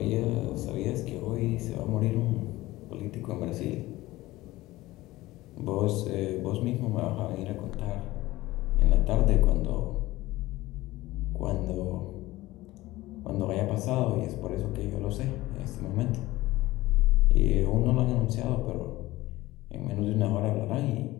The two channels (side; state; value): right; quieter; 18.1 dB